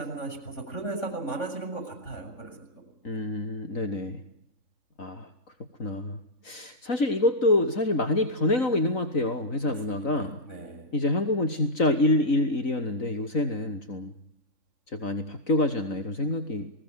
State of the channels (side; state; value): right; late; 3.9 ms